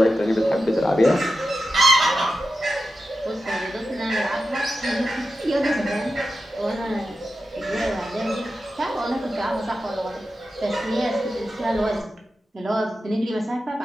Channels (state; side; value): normal; both; correlation 0.91